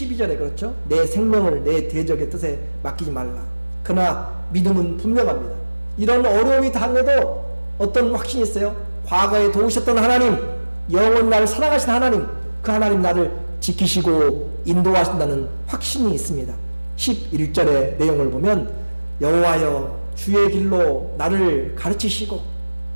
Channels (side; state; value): both; inverted; correlation -1.00